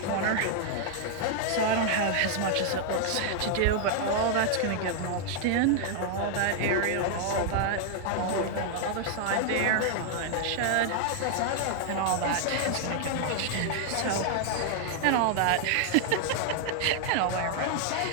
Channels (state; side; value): different; both; correlation 0.00